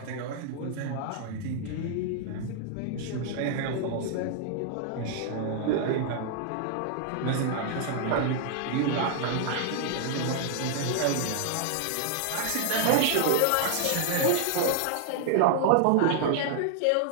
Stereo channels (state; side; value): different; both; correlation -0.01